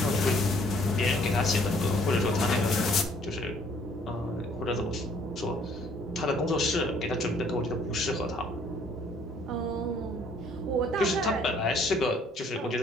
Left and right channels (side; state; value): both; normal; correlation 0.61